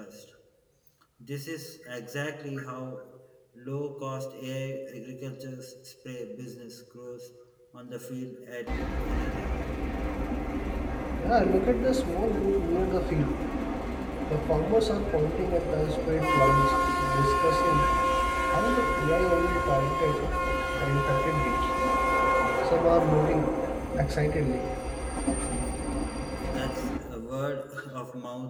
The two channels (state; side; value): identical; both; correlation 1.00